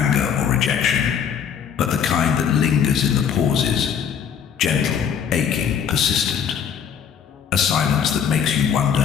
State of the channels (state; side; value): quieter; right; 7.8 dB